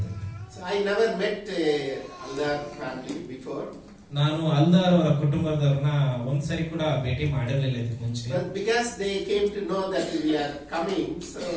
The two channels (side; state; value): both; identical; correlation 1.00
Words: So I never met Aldar family before. ನಾನು ಅಲ್ದಾರ್ ಅವರ ಕುಟುಂಬದವ್ರನ್ನ ಒಂದ್ಸರಿ ಕೂಡ ಭೇಟಿ ಮಾಡಿರಲಿಲ್ಲ ಇದಕ್ಕೆ ಮುಂಚೆ. But because they came to know that we are coming, so